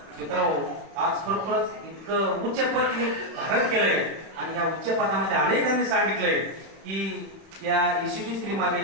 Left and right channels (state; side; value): late; left; 31 ms